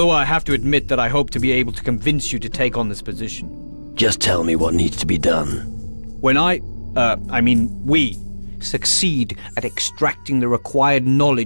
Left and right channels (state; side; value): inverted; both; correlation -1.00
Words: I have to admit that I hope to be able to convince you to take on this position. Just tell me what needs to be done. When we succeed at extracting the required